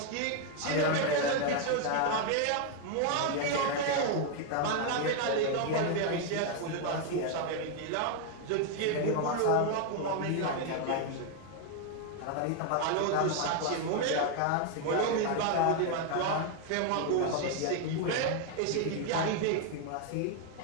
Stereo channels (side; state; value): both; different; correlation 0.01